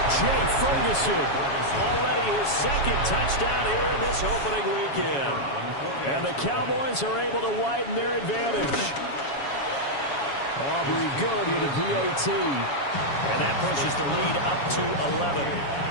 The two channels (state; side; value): late; right; 7.2 ms